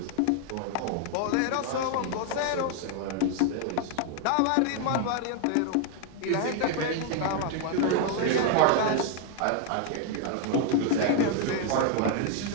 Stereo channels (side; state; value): both; different; correlation 0.00